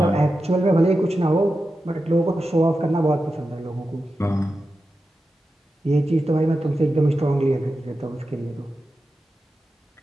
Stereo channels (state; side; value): normal; both; correlation 0.91